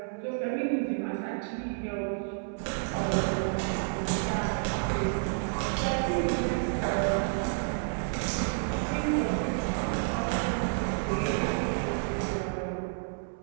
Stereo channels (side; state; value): left; silent; 58 dB below the other